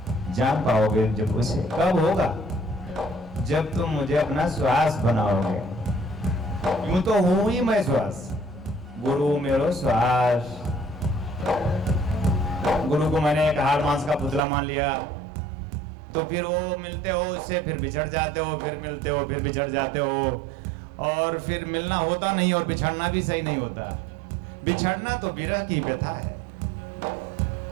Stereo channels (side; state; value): left; drops out; at 14.5 s